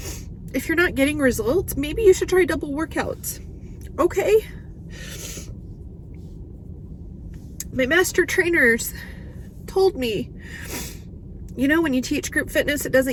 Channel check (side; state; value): both; identical; correlation 1.00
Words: if you're not getting results, maybe you should try double workouts. Okay. My master trainers told me, you know, when you teach group fitness, it